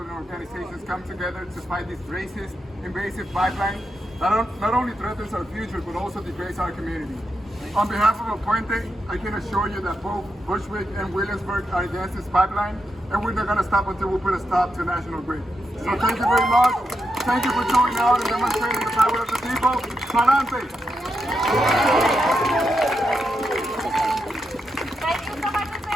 and organizations come together to fight this racist, invasive pipeline that not only threatens our future, but also degrades our community. On behalf of El Puente, I can assure you that both Bushwick and Williamsburg are against this pipeline, and we're not going to stop until we put a stop to National Grid. So thank you very much. Thank you for showing out and demonstrating the power of the people. Palante! Thank you so much,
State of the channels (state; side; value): normal; both; correlation 0.85